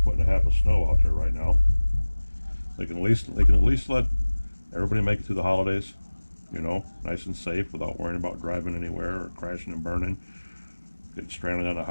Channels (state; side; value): inverted; both; correlation -1.00